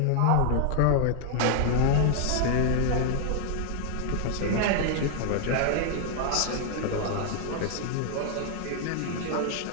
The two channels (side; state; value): both; different; correlation 0.00